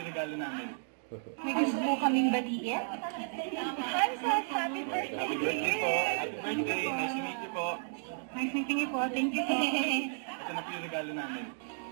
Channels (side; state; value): left; silent; digital silence